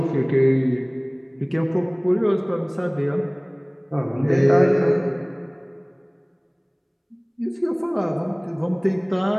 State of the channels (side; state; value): both; identical; correlation 1.00